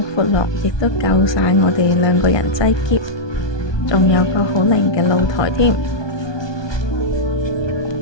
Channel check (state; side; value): late; right; 1.2 ms